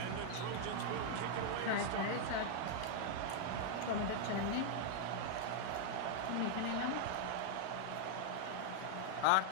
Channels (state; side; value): different; both; correlation -0.01